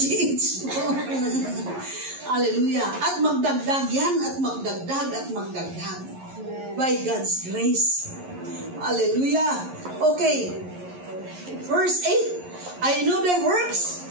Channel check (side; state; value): left; late; 11 ms